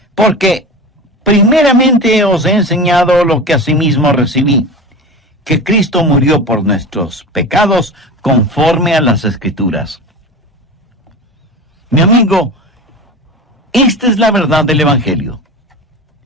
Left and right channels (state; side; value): normal; both; correlation 0.29